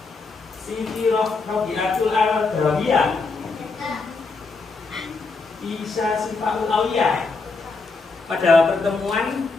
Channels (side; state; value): right; quieter; 4.1 dB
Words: Siti Robiatul Al-Dawiyah. Isa Sifaul Awiyah. Pada pertemuan